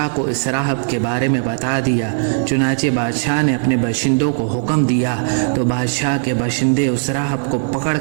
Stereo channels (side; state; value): left; silent; digital silence